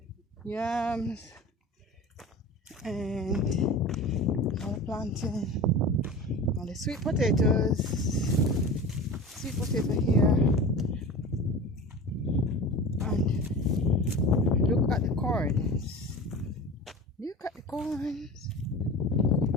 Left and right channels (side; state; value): both; normal; correlation 0.34